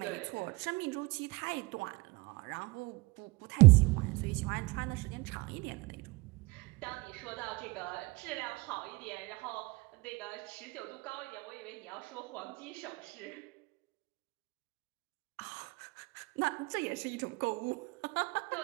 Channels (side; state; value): left; quieter; 23.8 dB